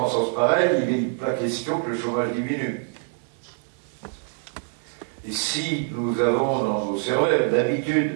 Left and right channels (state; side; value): silent; left; 58 dB below the other